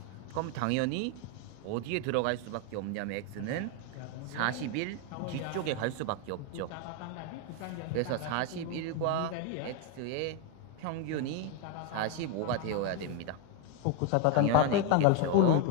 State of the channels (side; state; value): both; different; correlation 0.01